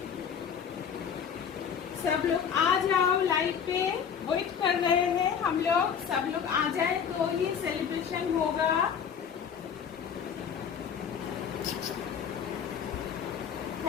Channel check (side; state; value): right; quieter; 7.5 dB